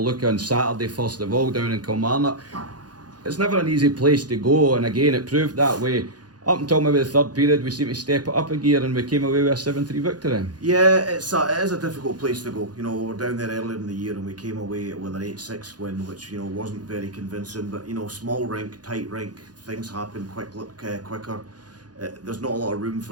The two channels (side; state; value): left; late; 0.69 ms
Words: look on Saturday first of all down in Kilmarnock. It's never an easy place to go, and again it proved that way. Up until maybe the third period, we seemed to step it up a gear and we came away with a 7-3 victory. Yeah, it is a difficult place to go. You know, we were down there earlier in the year and we came away with an 8-6 win, which, you know, wasn't very convincing. But, you know, small rink, tight rink, things happen quicker. There's not a lot of room